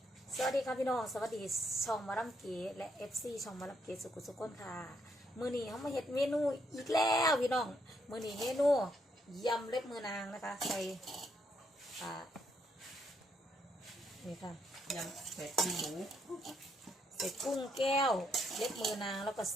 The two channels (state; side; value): normal; both; correlation 0.75